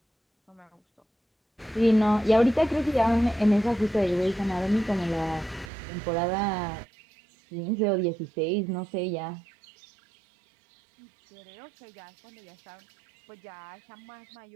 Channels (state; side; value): drops out; left; at 5.7 s